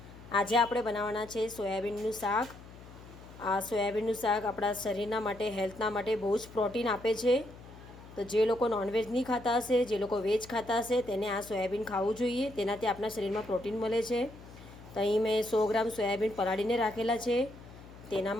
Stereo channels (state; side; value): noise; left; hum, 18 dB below the sound